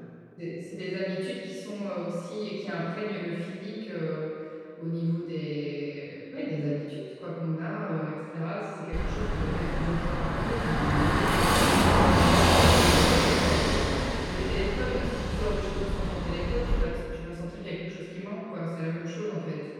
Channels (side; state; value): both; identical; correlation 1.00